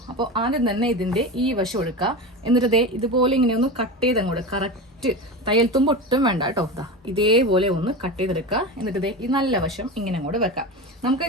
അപ്പോൾ ആദ്യം തന്നെ ഇതിൻ്റെ ഈ വശം എടുക്കുക. എന്നിട്ട് ഇതുപോലെ ഇങ്ങനെ ഒന്ന് കട്ട് ചെയ്ത് അങ്ങോട്ട് കറക്റ്റ് തയ്യൽ തുമ്പ് ഒട്ടും വേണ്ട കേട്ടോ. ഇതേപോലെ ഒന്ന് കട്ട് ചെയ്തെടുക്കുക. എന്നിട്ട് ഈ നല്ല വശം ഇങ്ങനെ അങ്ങോട്ട് വെക്കാം. നമുക്ക്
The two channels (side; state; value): both; normal; correlation 0.25